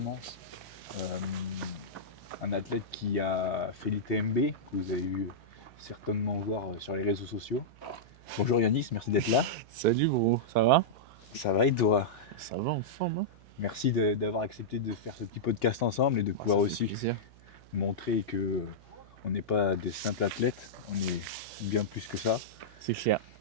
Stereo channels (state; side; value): noise; right; hum, 24 dB below the sound